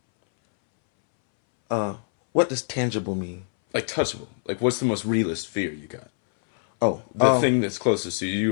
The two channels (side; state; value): right; silent; 62 dB below the other